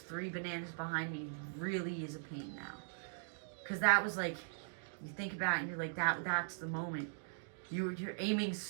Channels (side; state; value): left; silent; digital silence